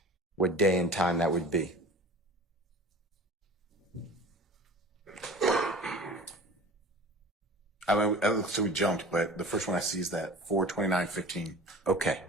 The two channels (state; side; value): normal; both; correlation 0.40